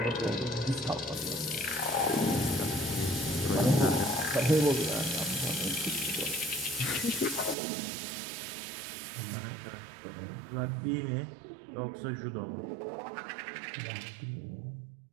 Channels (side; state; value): left; drops out; at 7.6 s